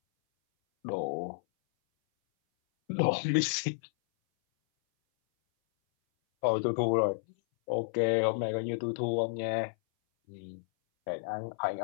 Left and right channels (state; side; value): silent; right; 57 dB below the other